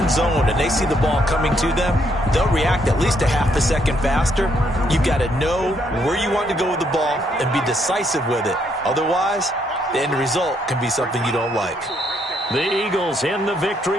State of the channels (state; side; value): normal; both; correlation 0.72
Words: zone and they see the ball coming to them, they'll react at least a half a second faster. You've got to know where you want to go with the ball and be decisive with it. Otherwise, the end result can be something you don't like. The Eagles in the